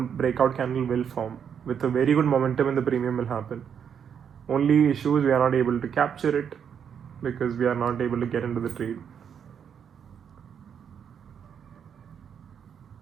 breakout candle will form with a very good momentum, and the premium will happen. Only issue is we are not able to capture it because we are not able to get into the trade.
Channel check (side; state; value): left; quieter; 7.8 dB